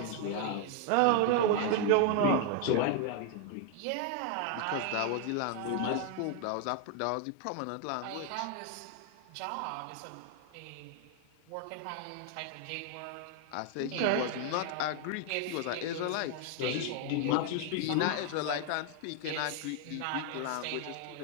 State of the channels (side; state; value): both; different; correlation 0.00